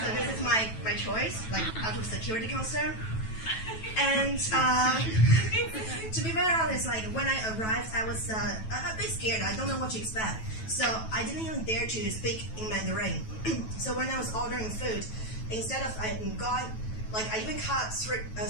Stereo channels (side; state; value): right; late; 9.2 ms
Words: this is my choice, like out of security concern. And to be very honest, like when I arrived, I was a bit scared. I don't know what to expect, so I didn't even dare to speak in Mandarin. So when I was ordering food, instead of going, like I even cut